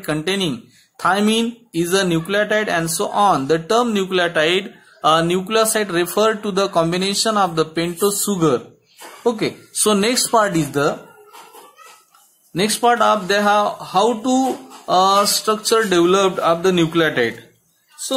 containing thymine is a nucleotide and so on. The term nucleotide nucleoside refer to the combination of the pentose sugar. Okay, so next part of they have how to structure developed of the nucleotide.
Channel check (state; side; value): identical; both; correlation 1.00